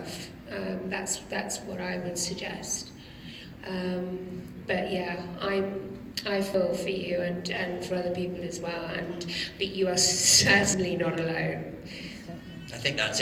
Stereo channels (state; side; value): identical; both; correlation 1.00